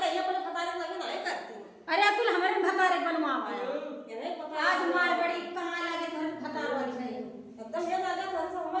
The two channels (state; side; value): identical; both; correlation 1.00